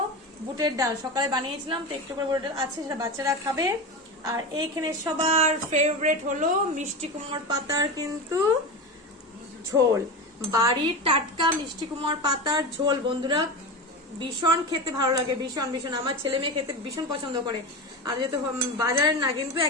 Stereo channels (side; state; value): both; normal; correlation 0.23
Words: বুটের ডাল, সকালে বানিয়েছিলাম, তো একটু করে বুটের ডাল আছে, সেটা বাচ্চারা খাবে। আর এইখানে সবার ফেভারিট হলো মিষ্টি কুমড়োর পাতার কিন্তু ঝোল, বাড়ির টাটকা মিষ্টি কুমড়োর পাতার ঝোল। বন্ধুরা ভীষণ খেতে ভালো লাগে, ভীষণ ভীষণ। আমার ছেলে মেয়ে খেতে ভীষণ পছন্দ করে। আর যেহেতু বাজারের না, কিন্তু